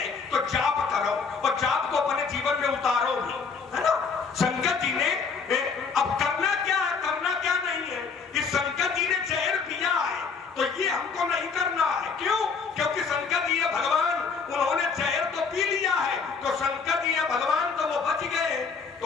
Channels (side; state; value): right; quieter; 5.3 dB